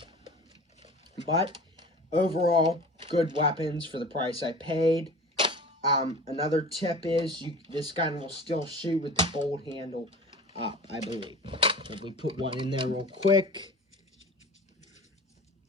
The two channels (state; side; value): normal; both; correlation 0.39